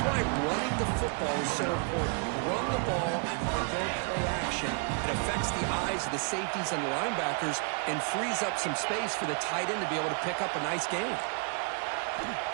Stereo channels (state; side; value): quieter; left; 39.6 dB